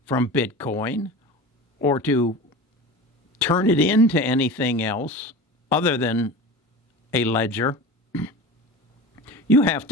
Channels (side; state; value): both; normal; correlation 0.32